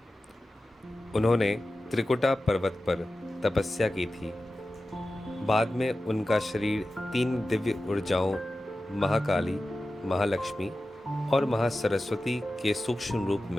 उन्होंने त्रिकुटा पर्वत पर तपस्या की थी। बाद में उनका शरीर 3 दिव्य ऊर्जाओं महाकाली, महालक्ष्मी और महासरस्वती के सूक्ष्म रूप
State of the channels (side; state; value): both; normal; correlation 0.94